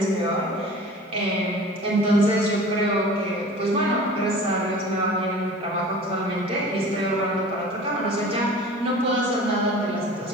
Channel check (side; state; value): both; normal; correlation 0.41